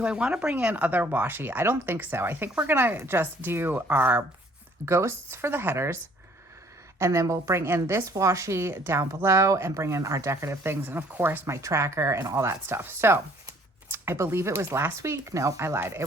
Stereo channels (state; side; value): normal; both; correlation 0.59